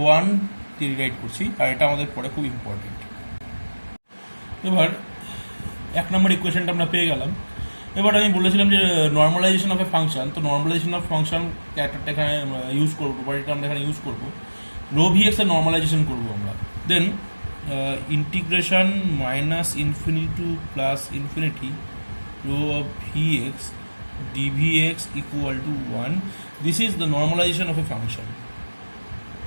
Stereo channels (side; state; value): both; inverted; correlation -1.00